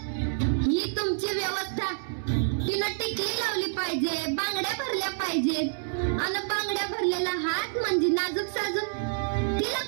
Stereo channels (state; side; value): silent; left; 59 dB below the other